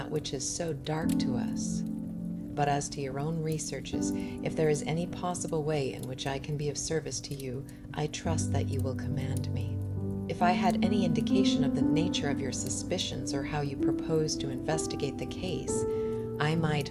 which is so dark to us. But as to your own researches, if there is any possible way in which I can be of service to you, I trust that you will command me. If I had any indication of the nature of your suspicions or how you propose to investigate the case, I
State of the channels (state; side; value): identical; both; correlation 1.00